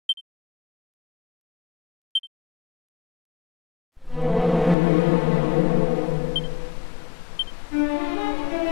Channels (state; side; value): drops out; right; at 4.8 s